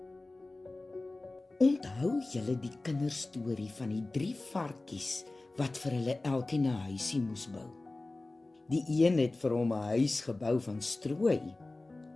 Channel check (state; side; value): quieter; right; 3.0 dB